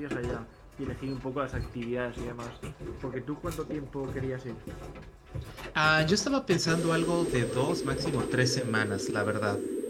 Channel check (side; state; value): both; identical; correlation 1.00